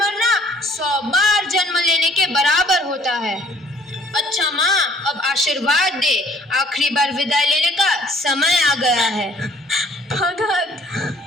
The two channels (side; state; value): both; normal; correlation 0.58